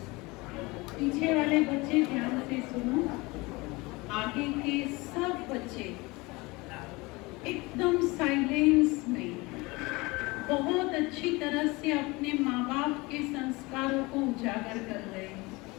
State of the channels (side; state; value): right; quieter; 23.8 dB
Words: पीछे वाले बच्चे ध्यान से सुनो। आगे के सब बच्चे एकदम साइलेंस में बहुत अच्छी तरह से अपने माँ बाप के संस्कारों को उजागर कर रहे